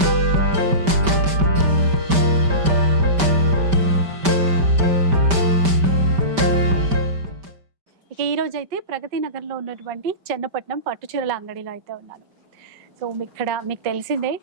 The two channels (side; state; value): left; late; 5.1 ms